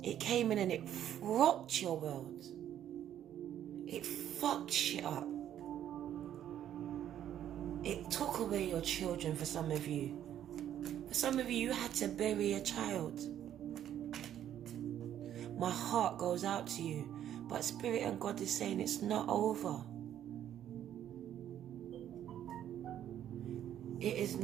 It came in and it rocked your world. It fucked shit up. It took away your children for some of you. For some of you, you had to bury a child. My heart goes out to you, but Spirit and God is saying it's not over. It is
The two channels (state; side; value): quieter; left; 10.8 dB